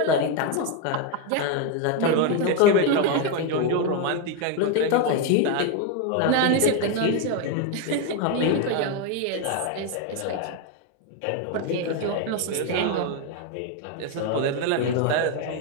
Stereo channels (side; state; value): both; different; correlation 0.02